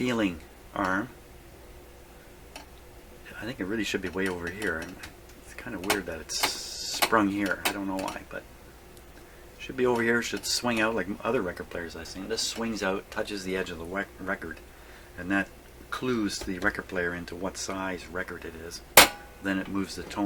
arm. I think it really should be way over here, and it's kind of weird that it's sprung here. I don't know why, but it should be over here. It should swing out like other record players I've seen. This swings out, touches the edge of the record, and that clues the record player into what size record it is. Then it moves the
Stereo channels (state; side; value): identical; both; correlation 1.00